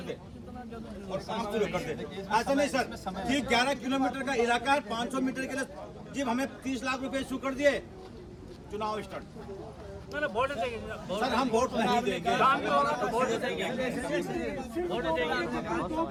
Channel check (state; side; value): identical; both; correlation 1.00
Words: दे और काम शुरू कर दे। ऐसा नहीं सर, ये 11 किलोमीटर का इलाका है, 500 मीटर के लिए जब हमें 30 लाख रुपए इशू कर दिए, चुनाव स्टार्ट। सर हम वोट नहीं देंगे। 2